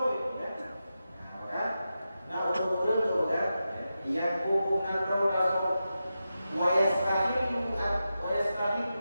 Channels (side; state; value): both; inverted; correlation -0.90